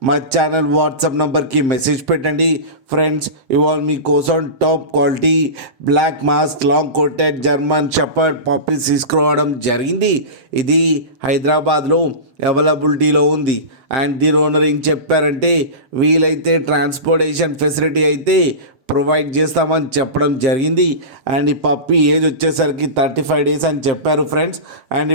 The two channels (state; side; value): late; left; 7.6 ms